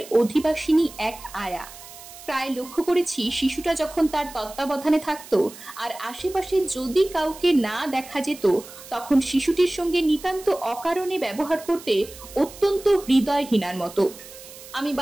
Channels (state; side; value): noise; right; hiss, 17 dB below the sound